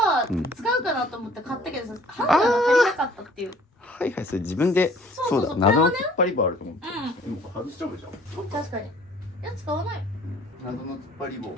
使うかなと思って買ったけどさ、ハンガーが足りなかったっていう。はいはい、それ自分で。そうだ、謎の突っ張り棒あると思って。でも外しちゃうじゃん。確かに。いや、使わない。謎の突っ張り棒も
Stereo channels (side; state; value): both; normal; correlation 0.55